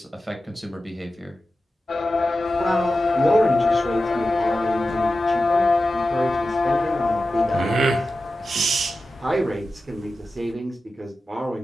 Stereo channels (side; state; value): both; normal; correlation 0.93